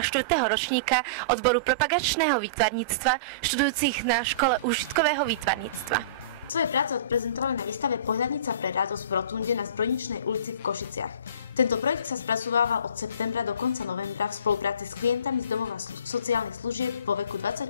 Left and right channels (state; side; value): inverted; both; correlation -0.38